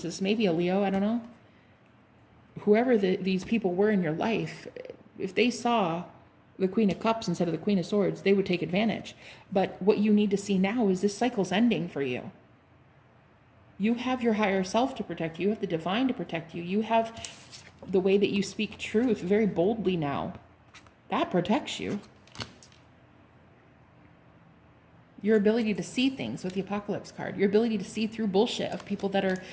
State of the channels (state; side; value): identical; both; correlation 1.00